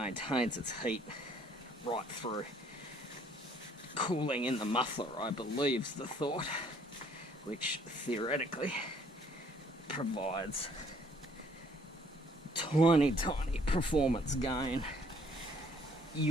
its heat right through. Cooling in the muffler, I believe, is the thought, which theoretically provides tiny performance gain.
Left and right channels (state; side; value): normal; both; correlation 0.62